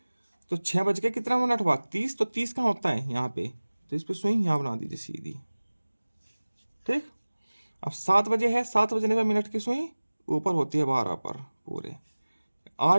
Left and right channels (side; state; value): both; inverted; correlation -1.00